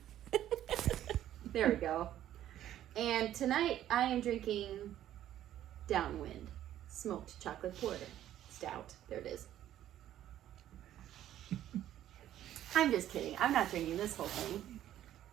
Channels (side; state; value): left; quieter; 12.1 dB